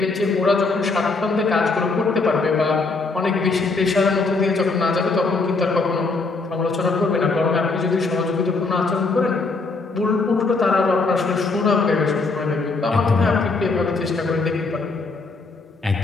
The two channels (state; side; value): quieter; right; 3.8 dB